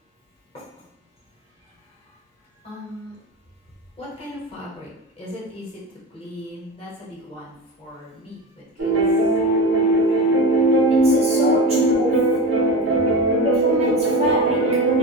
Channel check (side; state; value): both; normal; correlation 0.25